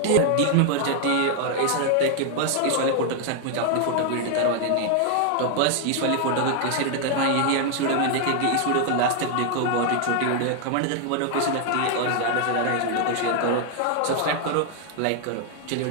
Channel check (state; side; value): different; both; correlation 0.00